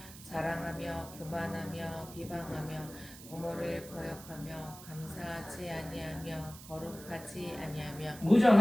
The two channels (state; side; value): noise; right; hiss, 16 dB below the sound